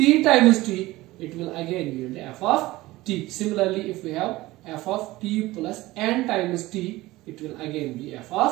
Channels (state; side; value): quieter; left; 18.6 dB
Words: times t, it will again lead f of t. Similarly, if we have f of t plus n times t, it will again be f